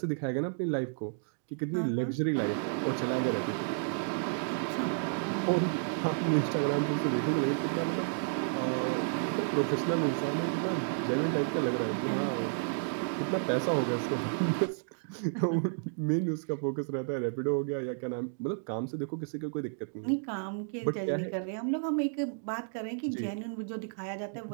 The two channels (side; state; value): left; silent; digital silence